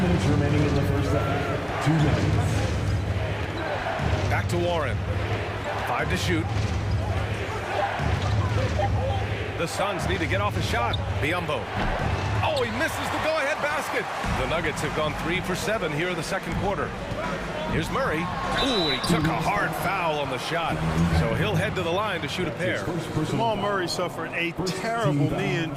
minutes remaining in the first half. 2 minutes. Back to Warren. 5 to shoot. The Suns need to get off a shot. Biyombo. Oh, he misses the go-ahead basket. The Nuggets have gone 3 for 7 here in the second quarter. Here's Murray. Ooh, he took a hard foul on the shot. So he'll head to the line to shoot a pair. Jamal Murray suffered a terrible knee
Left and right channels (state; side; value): identical; both; correlation 1.00